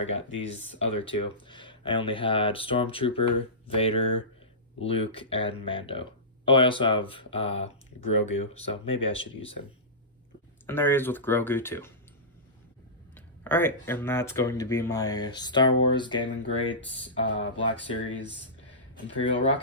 got these other two. I only had Stormtrooper, Vader, Luke, and Mando. Oh, I also have Grogu, so maybe I should use him. And there he is with Grogu too. Alright, and that's going to be my Star Wars Gaming Greats Black Series Imperial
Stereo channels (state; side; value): normal; both; correlation -0.20